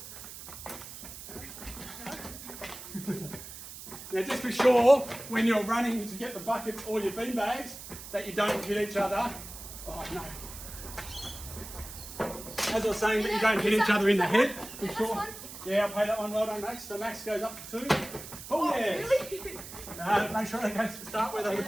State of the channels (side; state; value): right; noise; hiss, 12 dB below the sound